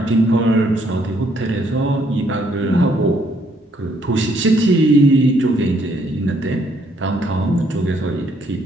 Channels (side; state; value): both; normal; correlation 0.68